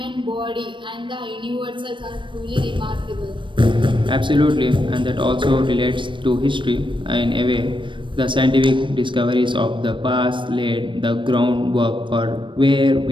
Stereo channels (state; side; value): late; left; 0.24 ms